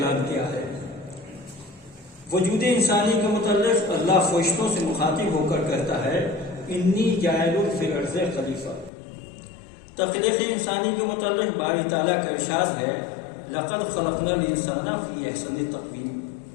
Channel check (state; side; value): drops out; right; at 8.9 s